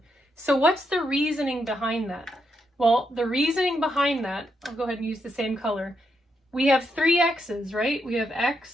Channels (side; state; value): both; normal; correlation 0.80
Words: So what's the reasoning behind that? Well, the reasoning behind that, I'll go ahead and use the same color. We have 3 x's, right? We have